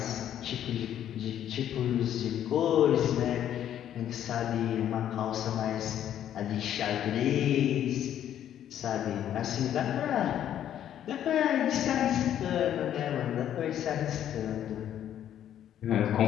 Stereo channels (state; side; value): quieter; right; 10.6 dB